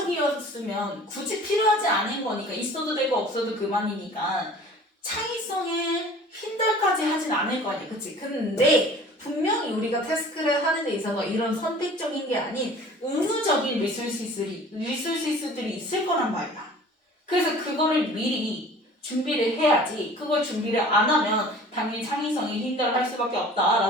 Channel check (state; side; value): normal; both; correlation 0.46